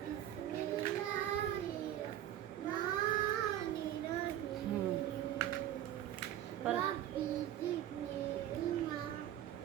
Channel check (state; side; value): quieter; left; 12.0 dB